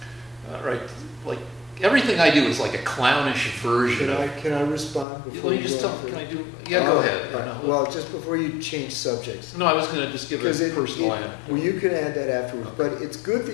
everything I do is like a clownish version Can I respond before Let me you just go tell. on Can I further? do? Yeah, go ahead. All right. Well, just before you change subjects. No, I was going to just give a personal anecdote. Well, you can add that afterwards. Okay. But it's good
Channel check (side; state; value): right; drops out; at 5.1 s